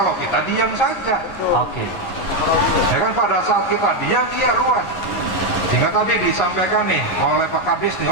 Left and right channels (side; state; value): right; late; 11 ms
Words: kita diam saja. Oke. Ya kan pada saat kita diam iya ruwet. Sehingga tadi disampaikan nih oleh Pak Kadis nih,